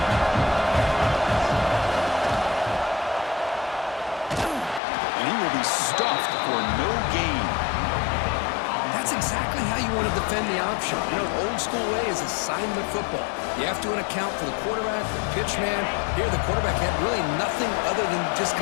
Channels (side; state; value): right; drops out; at 4.8 s